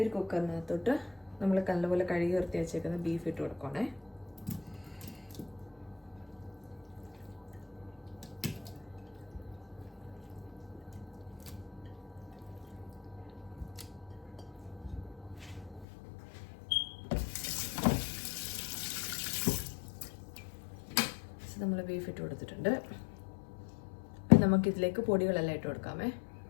ഒരു കുക്കറിനകത്തോട്ട് നമ്മൾ നല്ലപോലെ കഴുകി വൃത്തി വെച്ചേക്കുന്ന ബീഫ് ഇട്ട് കൊടുക്കണേ. നമ്മൾ ബീഫ് ഇട്ട് കൊടുത്തിട്ടുണ്ട്. നമുക്കിതിലേക്ക് പൊടികളെല്ലാം ഇട്ട് കൊടുക്കാമേ.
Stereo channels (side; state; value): right; drops out; at 15.9 s